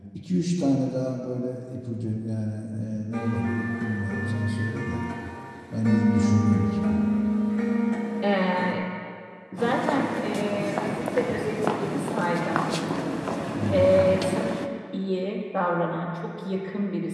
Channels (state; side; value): identical; both; correlation 1.00